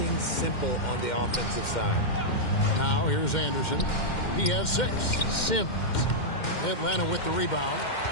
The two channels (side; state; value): right; late; 2.1 ms